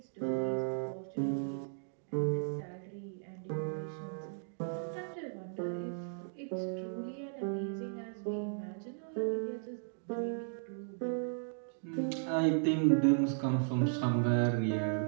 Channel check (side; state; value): left; silent; digital silence